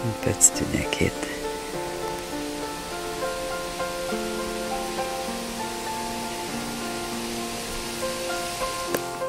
Une petite unikite.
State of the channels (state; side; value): identical; both; correlation 1.00